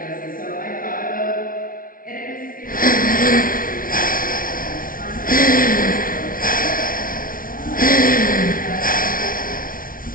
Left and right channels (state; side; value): late; right; 0.41 ms